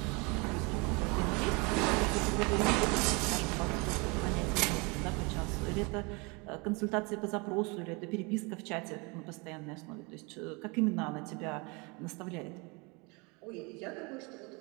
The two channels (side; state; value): left; quieter; 29.0 dB